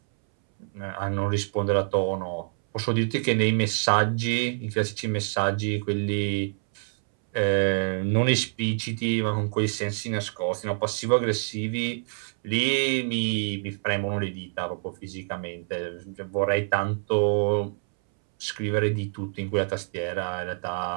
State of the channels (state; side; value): silent; left; 60 dB below the other